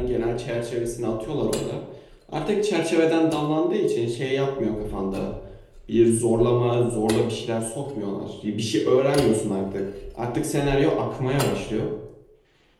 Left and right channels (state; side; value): identical; both; correlation 1.00